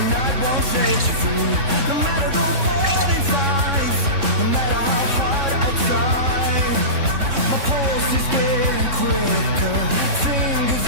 night won't set you free. No matter the warning signs, no matter how hard I try, my pulse is getting quicker, fingers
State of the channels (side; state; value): left; late; 3.6 ms